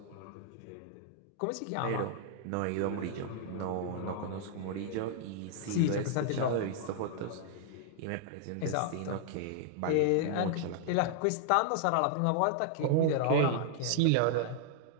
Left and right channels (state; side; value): different; both; correlation -0.01